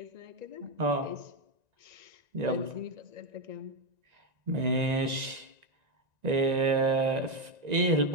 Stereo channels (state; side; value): late; left; 1.9 ms